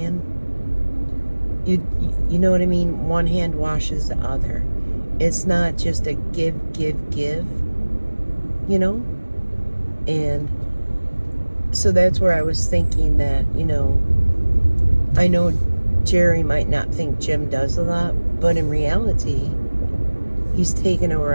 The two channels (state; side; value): inverted; both; correlation -1.00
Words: You know what I mean? One hand washes the other. It's not just a give, you know? And so that's where I was thinking that, you know, I know Jerry might not think Jim does a lot, but in reality, he's taken over